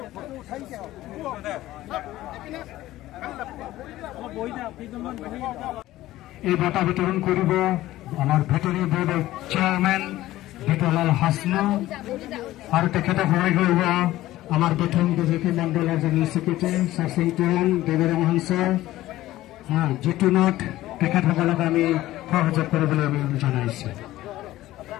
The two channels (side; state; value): right; quieter; 15.7 dB